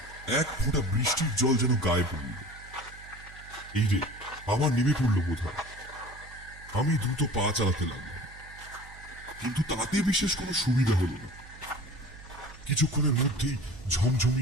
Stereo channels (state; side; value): noise; right; hum, 19 dB below the sound